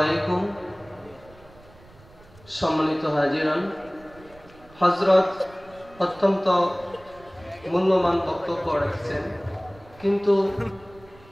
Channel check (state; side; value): noise; right; rumble, 24 dB below the sound